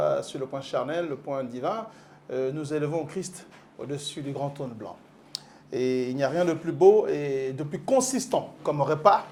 sur le point charnel, le point divin, nous élevons Christ au-dessus du grand trône blanc. Et il n'y a rien de plus beau et de plus consistant comme repas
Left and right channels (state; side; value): identical; both; correlation 1.00